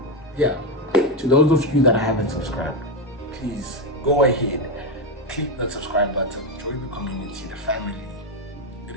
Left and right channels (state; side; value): normal; both; correlation 0.10